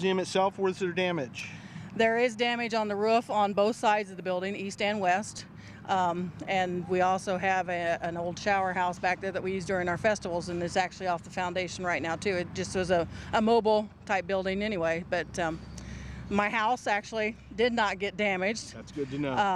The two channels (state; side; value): identical; both; correlation 1.00